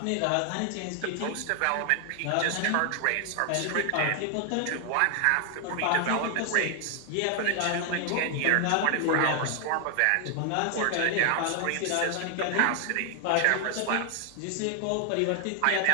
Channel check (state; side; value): different; both; correlation 0.00